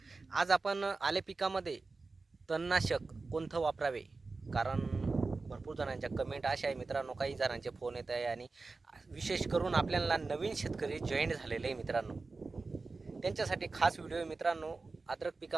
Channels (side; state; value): left; quieter; 3.9 dB